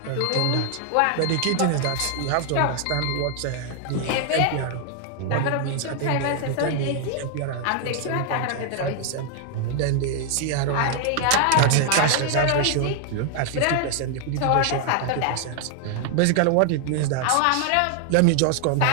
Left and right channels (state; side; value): different; both; correlation 0.00